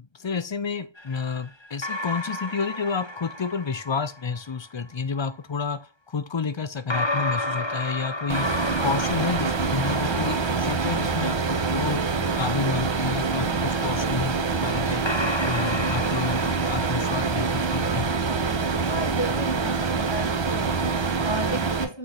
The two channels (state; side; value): late; right; 1.3 ms